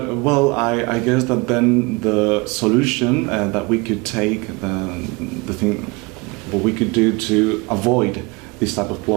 well, I guess that then the solution that we could take, the thing, what we could do to avoid this type of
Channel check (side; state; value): left; quieter; 26.2 dB